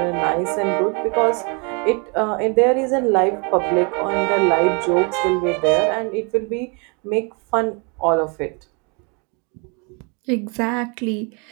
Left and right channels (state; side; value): quieter; left; 33.8 dB